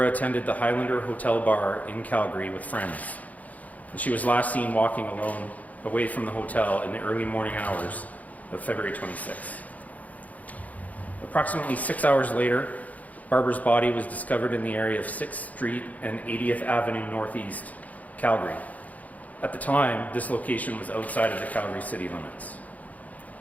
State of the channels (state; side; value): late; right; 0.075 ms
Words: attended the Highlander Hotel Bar in Calgary with friends, and she was last seen walking alone away from the hotel in the early morning hours of February 26th. Approximately 6 hours later, Barbara's body was discovered in the area of 6th Street and 80th Avenue Northeast, Calgary. At the time, this location was outside of the Calgary city limits.